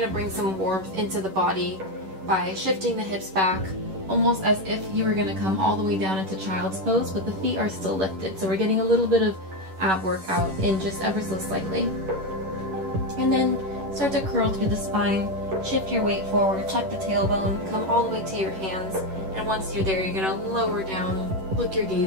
to bring some warmth into the body by shifting the hips back, almost as if you were going to come all the way down into child's pose, but the feet are still lifted. So we're getting a little bit of ab workout in just ever so slightly. And then start to curl through the spine, shift your weight forward, tuck the tailbone, come all the way to your hands, and once you're there, you're going to lower down, look your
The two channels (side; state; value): left; late; 10 ms